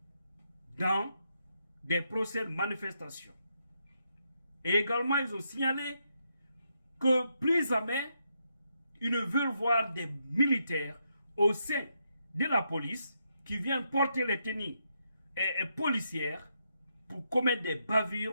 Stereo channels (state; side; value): inverted; both; correlation -0.80